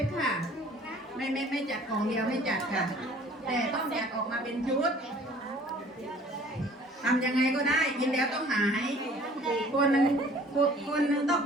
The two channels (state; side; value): normal; both; correlation 0.52